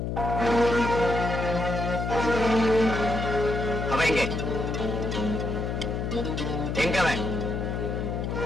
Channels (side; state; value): left; noise; hum, 2 dB below the sound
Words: அவன் எங்க? எங்க அவன்?